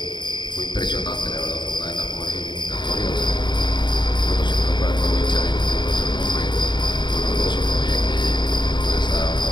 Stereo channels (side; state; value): right; late; 0.22 ms